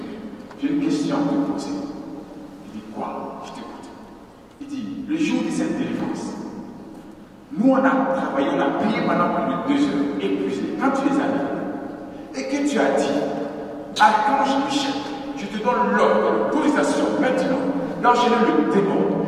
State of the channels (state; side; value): identical; both; correlation 1.00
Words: j'ai une question à te poser. Il dit, quoi? Je t'écoute. Il dit, le jour de cette délivrance, nous on a travaillé, on a prié pendant plus de 2 heures, épuisé. Quand tu les as mis, et que tu as dit, Archange Michel, je te donne l'ordre de l'autorisation maintenant d'enchaîner le démon,